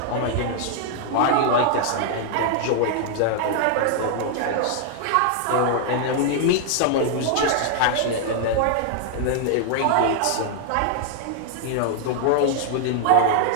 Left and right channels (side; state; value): both; different; correlation 0.00